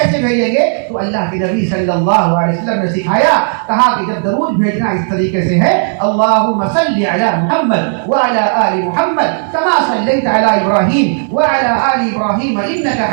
بھیجیں گے؟ تو اللہ کے نبی صلی اللہ علیہ وسلم نے سکھایا، کہا کہ جب درود بھیجنا اس طریقے سے ہے اللہم صلی علی محمد وعلی آل محمد کما صلیت علی ابراہیم وعلی آل ابراہیم انک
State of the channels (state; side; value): silent; left; 60 dB below the other